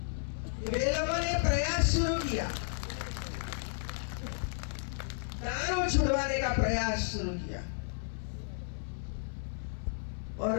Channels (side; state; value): right; silent; 56 dB below the other